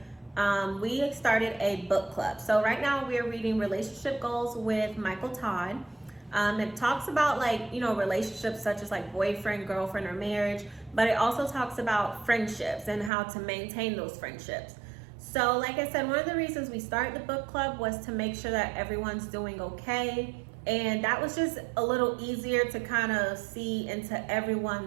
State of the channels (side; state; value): left; drops out; at 13.1 s